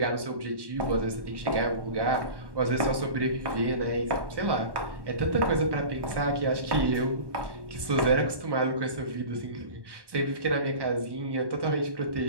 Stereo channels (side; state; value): left; late; 1.1 ms